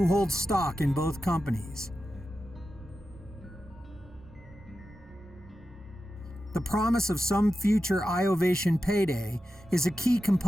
hold stock in both companies. The promise of some future iOvation payday is a key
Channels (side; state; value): both; normal; correlation 0.91